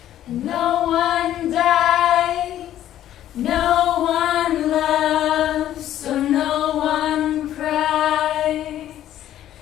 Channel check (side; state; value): right; quieter; 12.1 dB